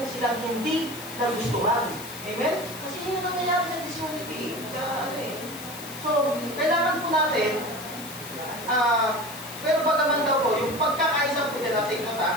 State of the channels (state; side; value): noise; left; hiss, 13 dB below the sound